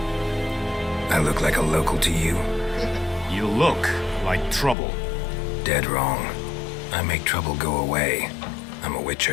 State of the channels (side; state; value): right; drops out; at 4.8 s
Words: I look like a local to you? You look like trouble. Dead wrong. I make trouble go away. I'm a